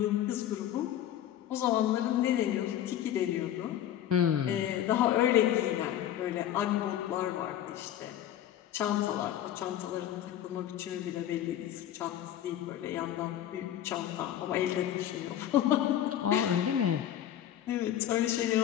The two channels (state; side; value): quieter; right; 11.3 dB